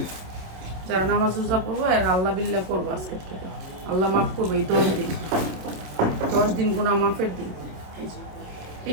যারা নামাজ রোজা পড়বো আর আল্লাহ বিল্লাহ করবো আজকের থেকে, আল্লাহ মাফ করবো এই 10 দিন গুনাহ মাফের দিন।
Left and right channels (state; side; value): late; left; 27 ms